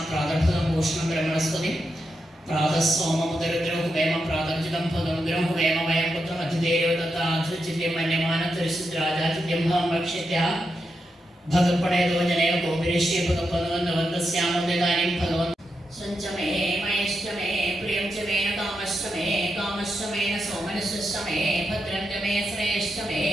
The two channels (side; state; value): both; normal; correlation 0.86